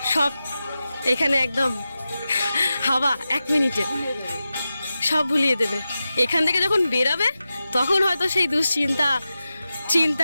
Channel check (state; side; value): inverted; both; correlation -0.93